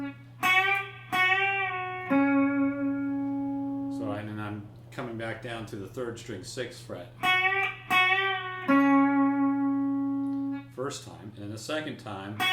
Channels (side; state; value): both; identical; correlation 1.00